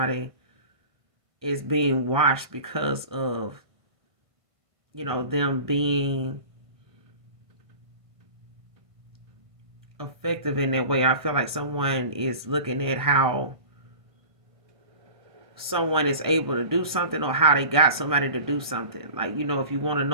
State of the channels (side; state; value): left; late; 1.5 ms